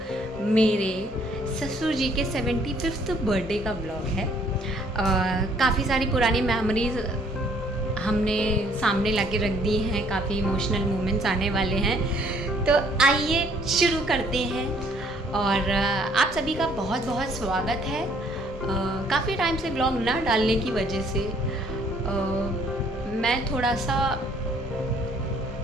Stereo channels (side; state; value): both; normal; correlation 0.62